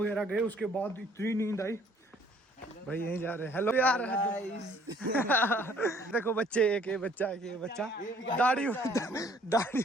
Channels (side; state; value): both; normal; correlation 0.60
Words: गए उसके बाद इतनी नींद आई भाई। यहीं जा रहे हैं। हेलो यार देखो बच्चे, एक ये बच्चा दाढ़ी